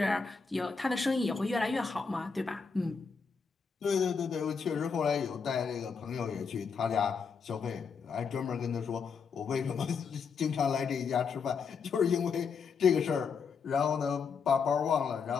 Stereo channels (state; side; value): quieter; right; 5.6 dB